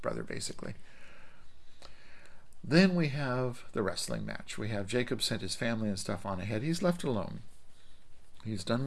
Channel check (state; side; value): identical; both; correlation 1.00